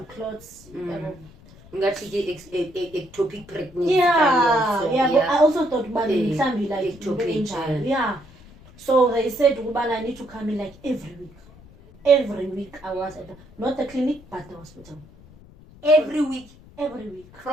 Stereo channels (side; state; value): left; noise; rumble, 23 dB below the sound